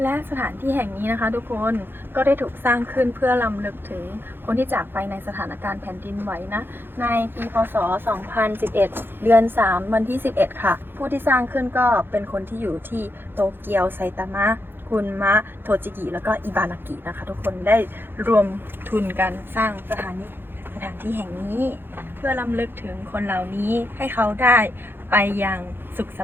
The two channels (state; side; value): late; left; 0.10 ms